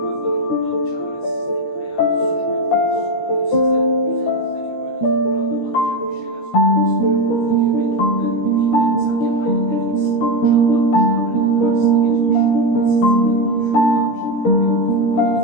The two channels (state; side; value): late; right; 13 ms